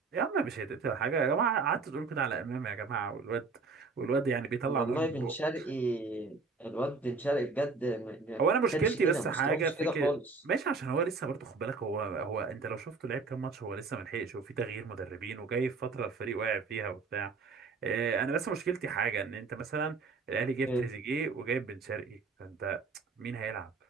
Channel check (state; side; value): quieter; left; 4.4 dB